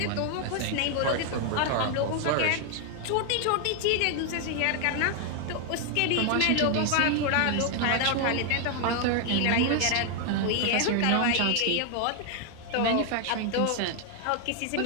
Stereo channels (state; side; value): different; both; correlation 0.00